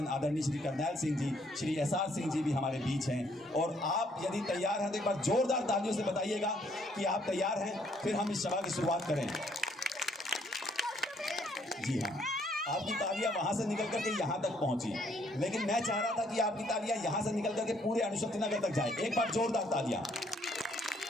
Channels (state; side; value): normal; both; correlation 0.67